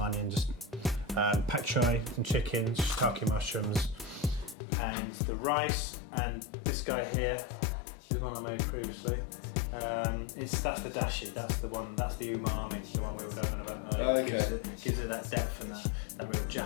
onion, just pak choi, some chicken, shiitake mushrooms, and the rice. And this guy here is one I made previously. That's the dashi. That's the one. That's the umami. The one we were going about earlier. Okay. Gives it that depth and that real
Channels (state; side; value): drops out; right; at 4.5 s